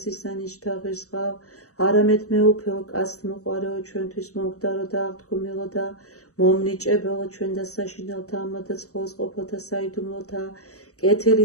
ღირს ყავ. არამედ მე უფეო კაცთ მოყარეო, ჩვენთვის მომკვდარო და აღთქმილო და მომნიჭებელო, ჩვენ და საშინელთა ამადა ცხოველს ყოფილთა საიდუმლოთა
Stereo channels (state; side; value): late; right; 0.65 ms